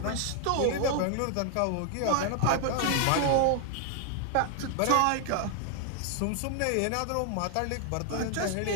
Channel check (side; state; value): both; different; correlation 0.00